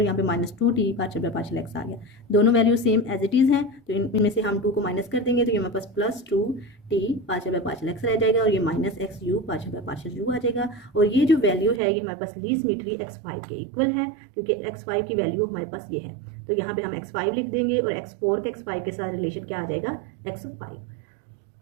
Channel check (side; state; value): left; drops out; at 11.8 s